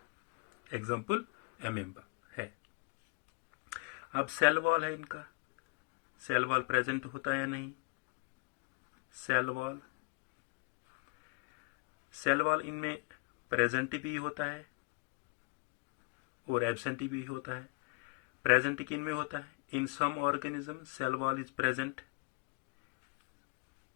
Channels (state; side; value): quieter; right; 31.4 dB